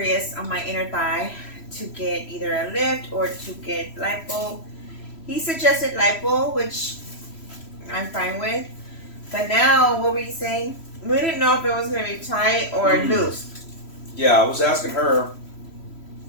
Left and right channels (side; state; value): right; late; 3.0 ms